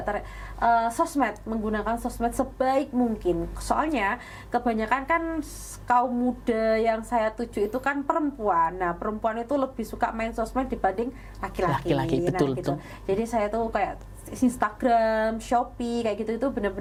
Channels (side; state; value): both; identical; correlation 1.00